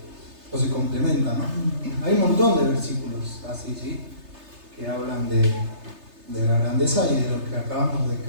O se complementa, ¿no? Hay un montón de versículos así, ¿sí? Que hablan de la grandeza y de lo que acabamos de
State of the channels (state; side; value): late; left; 3.3 ms